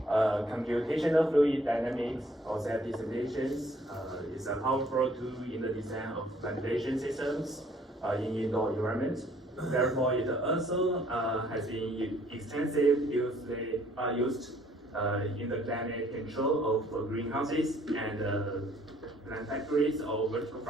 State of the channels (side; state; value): both; normal; correlation 0.61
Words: Computational fluid dynamics or safety simulations is a powerful tool in the design of ventilation systems in indoor environment. Therefore, it also has been extensively used in the climate control of greenhouses and plant factories or vertical